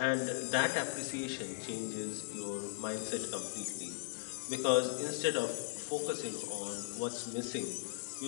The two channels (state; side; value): silent; right; digital silence